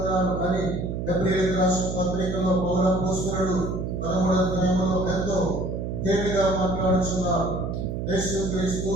అని హెబ్రీయులకు రాసిన పత్రికలో పౌరపోస్తలుడు 13వ అధ్యాయంలో ఎంతో తేలిగా మాట్లాడుతున్నారు. యేసు క్రీస్తు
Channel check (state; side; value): noise; right; hum, 4 dB below the sound